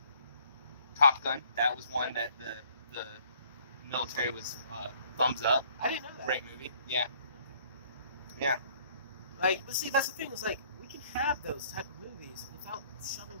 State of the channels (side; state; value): both; inverted; correlation -0.60